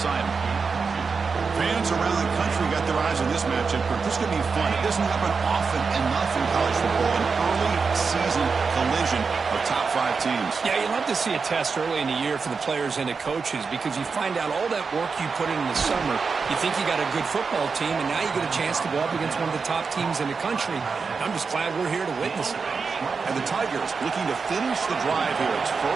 Fans around the country got their eyes on this matchup. This is going to be fun. It doesn't happen often enough in college football. An early season collision of top 5 teams. Yeah, you love to see a test early in the year for the players and the coaches because you find out all that work you put in the summer. You think you got a good football team, and now you get a chance to go up against one of the top teams in the country. I'm just glad we're here to witness it. And the Tigers looking to finish the drive here. It's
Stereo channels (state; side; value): quieter; left; 5.0 dB